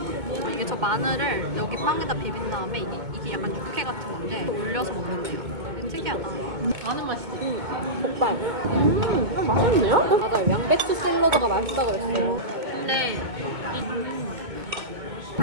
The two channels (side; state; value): left; late; 2.2 ms